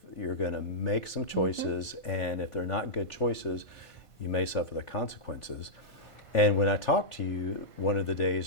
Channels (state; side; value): late; right; 1.5 ms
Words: you're going to make some choices, and if they're not good choices, you may suffer the consequences. And when I talked to you one of the